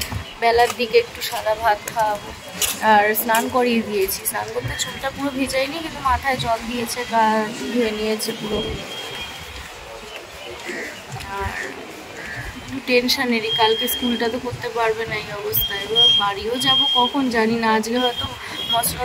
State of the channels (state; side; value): identical; both; correlation 1.00